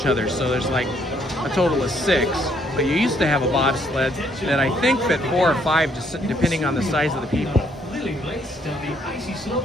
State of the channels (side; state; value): both; normal; correlation 0.68